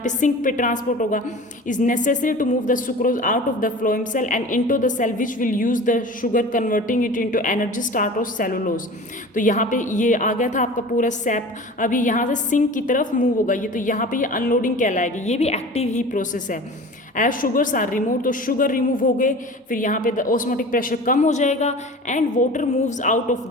सिंक पे ट्रांसपोर्ट होगा। Is necessary to move the sucrose out of the phloem cell and into the cell which will use the sugar converting it into energy start of cellulose. तो यहाँ पे ये आ गया था आपका पूरा सैप, अभी यहाँ से सिंक की तरफ मूव होगा ये, तो यहाँ पे ये अनलोडिंग कहलाएगी। ये भी एक्टिव ही प्रोसेस है। एज शुगर्स आर रिमूव, तो शुगर रिमूव हो गए, फिर यहाँ पे ऑस्मोटिक प्रेशर कम हो जाएगा and water moves out of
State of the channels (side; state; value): both; normal; correlation 0.38